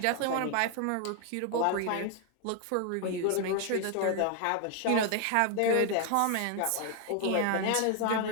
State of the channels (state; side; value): different; both; correlation 0.01